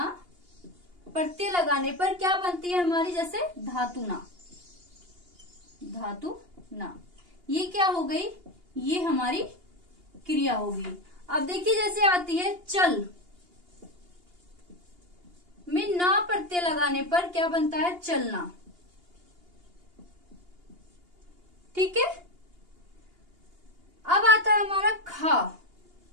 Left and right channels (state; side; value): late; left; 2.8 ms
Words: लगाने पर क्या बनती है हमारी? जैसे धातु ना। ये क्या हो गई? ये हमारी क्रिया होगी। अब देखिए, जैसे आती है चल में ना प्रत्यय लगाने पर क्या बनता है? चलना। ठीक है। अब आता है हमारा